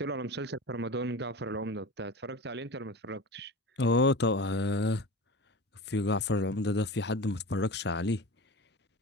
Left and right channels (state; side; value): normal; both; correlation 0.31